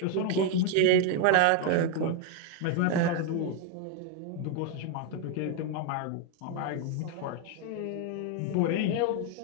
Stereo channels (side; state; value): both; different; correlation 0.01